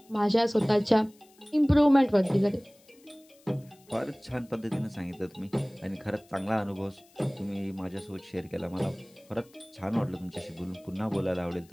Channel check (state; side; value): noise; left; hiss, 29 dB below the sound